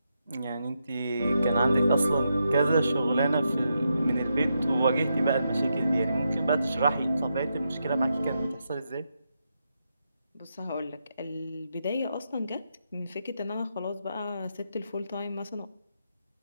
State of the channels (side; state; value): both; inverted; correlation -0.83